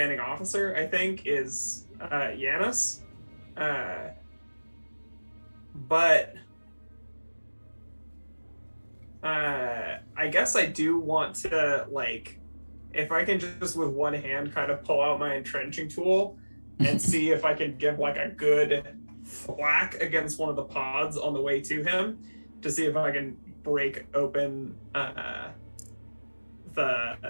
officer, I think, is Yanis. But I guess I do want to, like, if I can just with one hand kind of pull out my entrenching tool and see if I can give like a good thwack against one of the pods on the way to him to see if I can break open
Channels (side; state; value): both; inverted; correlation -1.00